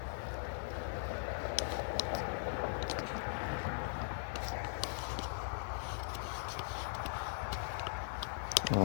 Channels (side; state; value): right; silent; 51 dB below the other